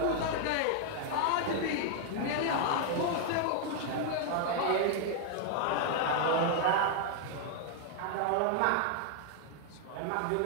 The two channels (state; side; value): different; both; correlation 0.00